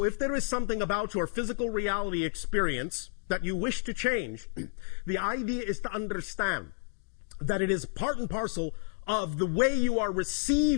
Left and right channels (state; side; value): silent; right; digital silence